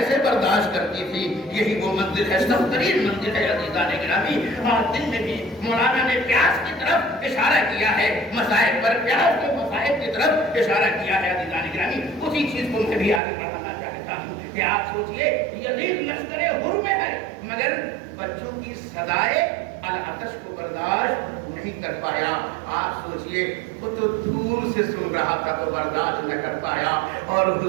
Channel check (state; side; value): drops out; left; at 13.2 s